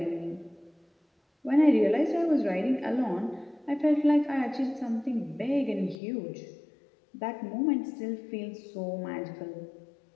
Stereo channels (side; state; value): right; drops out; at 6.0 s